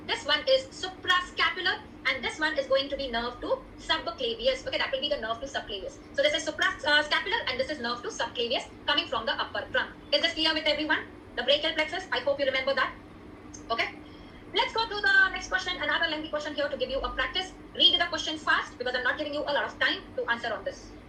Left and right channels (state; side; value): identical; both; correlation 1.00